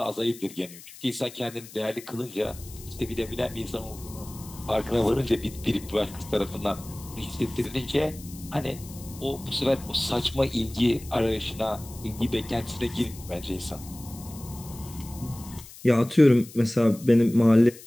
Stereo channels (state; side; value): noise; left; hiss, 17 dB below the sound